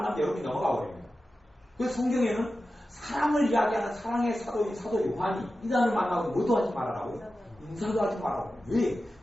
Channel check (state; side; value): normal; both; correlation 0.93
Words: 여러분이 넘어가 버립니다. 그래서 성경에는 사랑을 이야기하는 사랑의 사도인 사도 요한이 이단을 만나고 뭐도 하지 말아라고 인사도 하지 말라고. 왜?